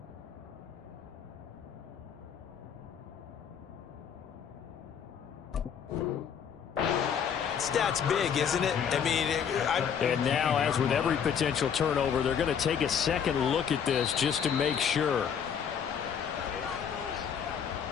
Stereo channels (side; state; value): right; quieter; 7.7 dB